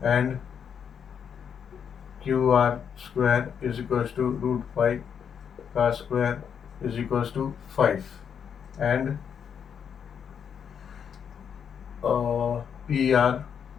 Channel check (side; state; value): right; quieter; 7.6 dB